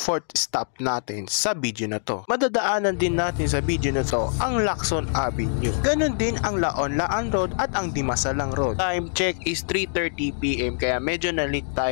stop natin sa video na to. Madadaanan din natin sa video na to ang Lacson Avenue. Ganon din ang Laon-Laan Road at ang Dimasalang Road. Time check is 3:30 PM kaya medyo na-late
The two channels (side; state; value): right; silent; digital silence